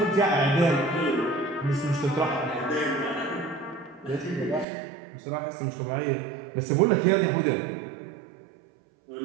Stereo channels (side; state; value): left; drops out; at 4.7 s